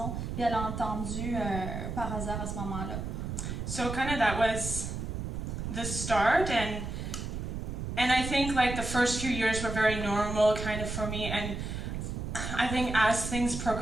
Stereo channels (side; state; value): right; noise; rumble, 4 dB below the sound